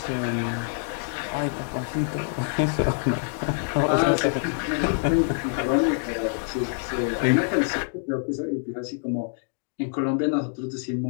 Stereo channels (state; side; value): silent; right; 61 dB below the other